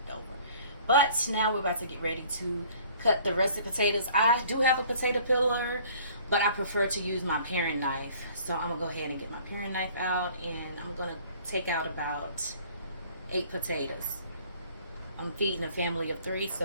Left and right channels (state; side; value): inverted; both; correlation -0.53